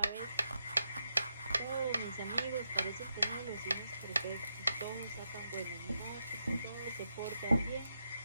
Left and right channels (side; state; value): both; inverted; correlation -0.84